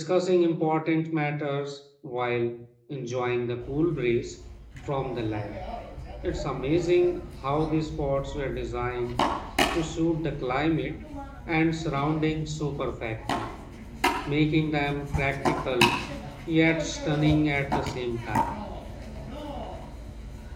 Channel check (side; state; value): both; identical; correlation 1.00